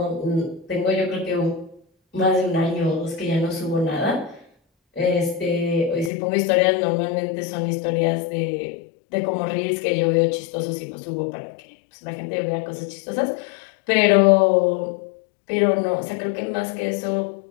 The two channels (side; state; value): right; drops out; at 6.1 s